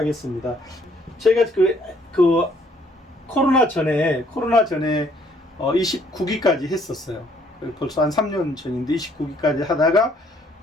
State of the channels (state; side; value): normal; both; correlation 0.64